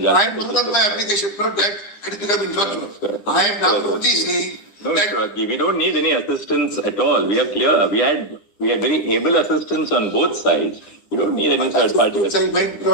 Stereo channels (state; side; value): late; right; 9.8 ms